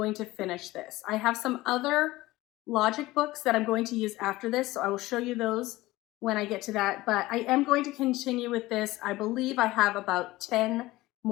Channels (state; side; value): quieter; right; 18.5 dB